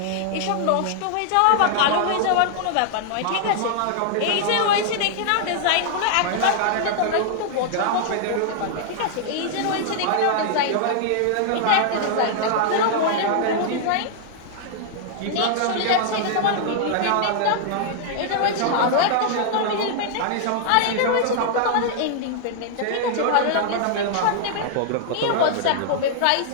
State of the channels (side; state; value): both; different; correlation -0.01